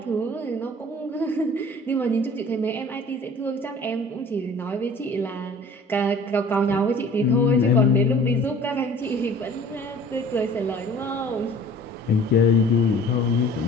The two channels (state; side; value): normal; both; correlation 0.48